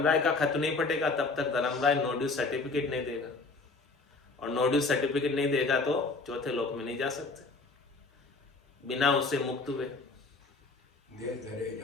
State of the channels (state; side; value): quieter; right; 3.8 dB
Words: का खत नहीं फटेगा तब तक धर्मराय नो ड्यूज सर्टिफिकेट नहीं देगा और नो ड्यूज सर्टिफिकेट नहीं देगा तो चौथे लोक में नहीं जा सकते बिना उससे मुक्त हुए। दे धरे